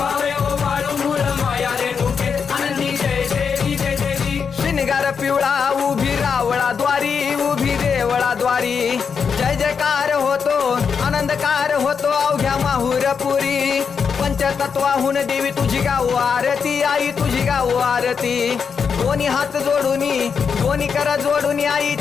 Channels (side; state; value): right; quieter; 6.2 dB